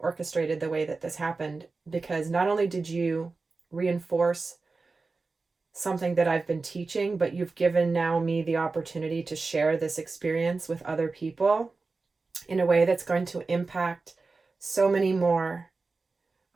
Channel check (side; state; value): left; quieter; 3.9 dB